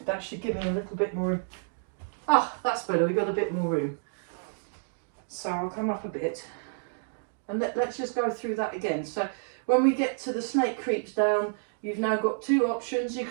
that should give me a little bit more. Ah, that's better. We've got a bit more room. So I'll come up a bit. And let's just go through that again. So when we get to the Snake Creeps Down, you've now got two options. You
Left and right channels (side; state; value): left; silent; digital silence